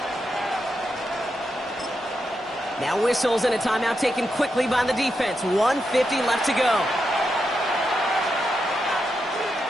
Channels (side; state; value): both; normal; correlation 0.85